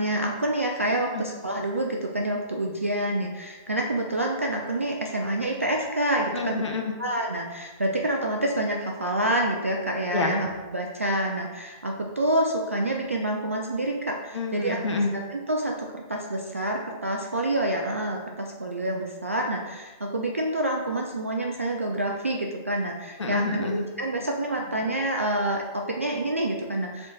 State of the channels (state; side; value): inverted; both; correlation -0.46